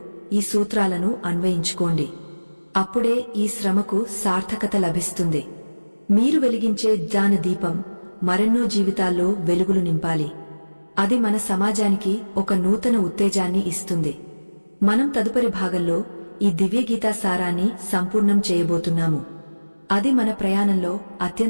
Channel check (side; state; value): both; inverted; correlation -1.00